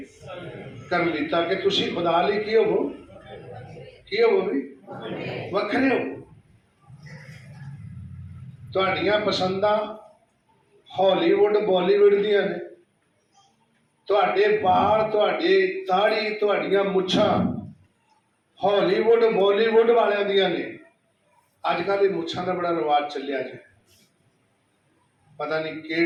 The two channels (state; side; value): identical; both; correlation 1.00